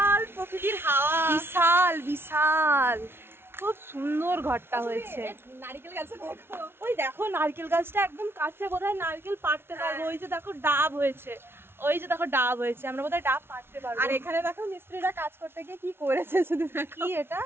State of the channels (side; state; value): left; late; 0.12 ms